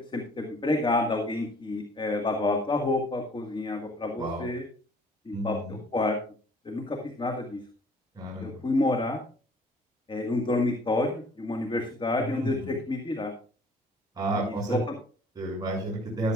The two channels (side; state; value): both; normal; correlation 0.55